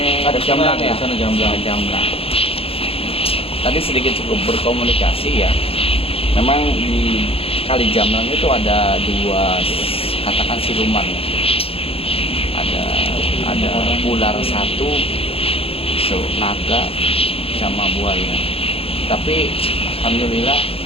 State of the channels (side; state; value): right; late; 0.28 ms